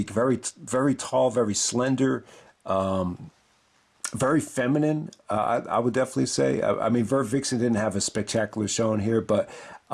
very, very tall, very slender, very feminine, I would definitely say. I mean, Vert Vixen didn't have a spectacular showing here, but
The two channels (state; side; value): identical; both; correlation 1.00